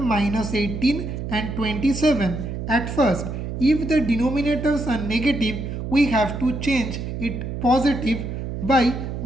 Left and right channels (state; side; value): noise; right; hum, 5 dB below the sound